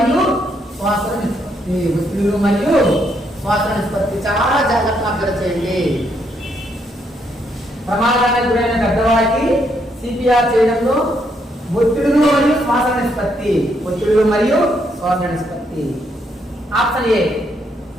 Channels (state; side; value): normal; both; correlation 0.75